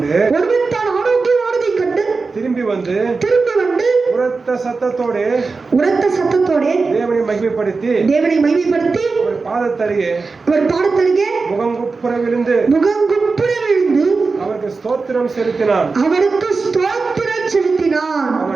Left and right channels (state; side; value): quieter; left; 4.2 dB